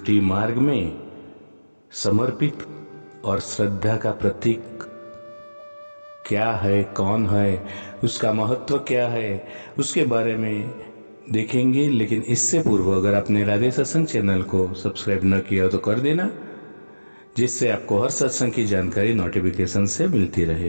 मार्ग में समर्पित और श्रद्धा का प्रतीक क्या है, कौन है, उसका महत्व क्या है, उसके बारे में देखेंगे। लेकिन इससे पूर्व अगर आपने राधे सत्संग चैनल को सब्सक्राइब न किया तो कर देना, जिससे आपको हर सत्संग की जानकारी नोटिफिकेशन से मिलती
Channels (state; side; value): inverted; both; correlation -1.00